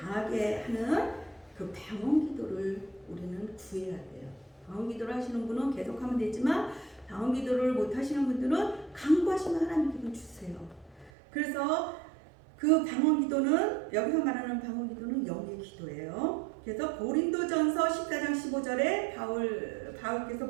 하는 그 방언 기도를 우리는 구해야 돼요. 방언 기도를 하시는 분은 계속하면 되지만 방언 기도를 못 하시는 분들은 간구하시면 하나님께 주세요. 그래서 그 방언 기도는 여기서 말하는 방언 기도는 영의 기도예요. 그래서 고린도전서 14장 15절에 바울께서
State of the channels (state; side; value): drops out; left; at 11.1 s